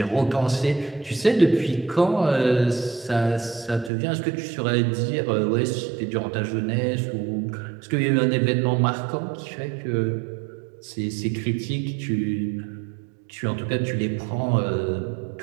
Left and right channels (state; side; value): drops out; left; at 3.9 s